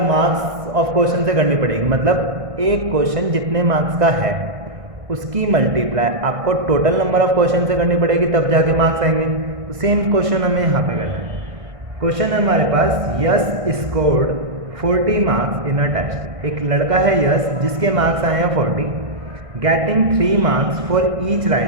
मार्क्स ऑफ क्वेश्चन से करनी पड़ेगी। मतलब एक क्वेश्चन जितने मार्क्स का है उसकी मल्टीप्लाई आपको टोटल नंबर ऑफ क्वेश्चन से करनी पड़ेगी, तब जाके मार्क्स आएंगे। तो सेम क्वेश्चन हमें यहाँ पे करना है। क्वेश्चन है हमारे पास, Yash scored 40 marks in a test. एक लड़का है यस जिसके मार्क्स आए हैं 40, getting 3 marks for each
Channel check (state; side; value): late; left; 1.6 ms